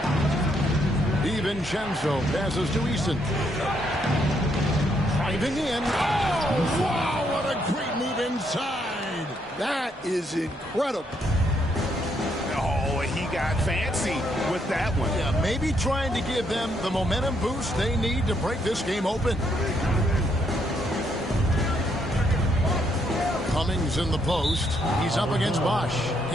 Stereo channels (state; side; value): normal; both; correlation 0.74